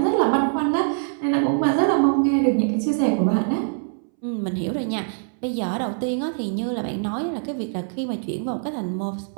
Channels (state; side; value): silent; left; 63 dB below the other